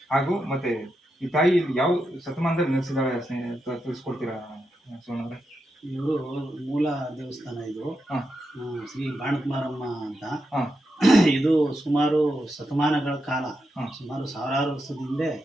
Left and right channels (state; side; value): normal; both; correlation 0.86